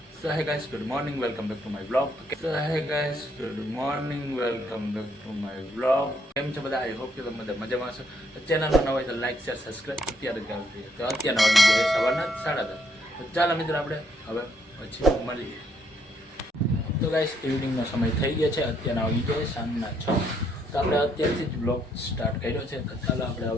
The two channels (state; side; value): normal; both; correlation 0.72